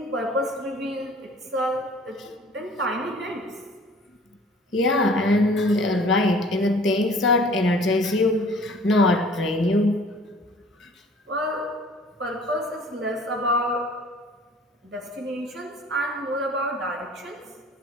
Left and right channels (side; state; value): both; normal; correlation 0.50